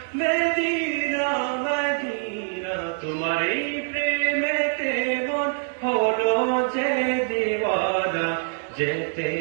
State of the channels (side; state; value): left; silent; 62 dB below the other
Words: মদিনা তোমার এই প্রেমেতে মন হলো যে দিওয়ানা যেতে